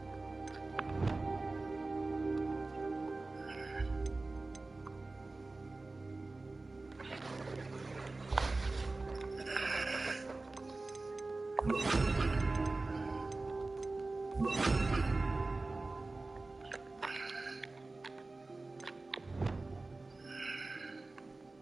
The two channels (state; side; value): quieter; left; 3.3 dB